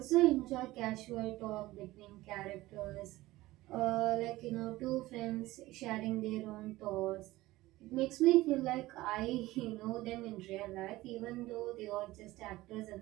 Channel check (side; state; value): left; quieter; 18.0 dB